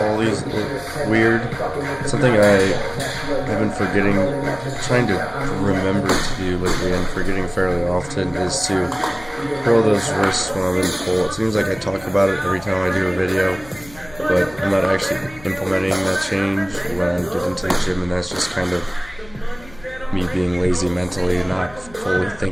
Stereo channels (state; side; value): noise; left; hum, 21 dB below the sound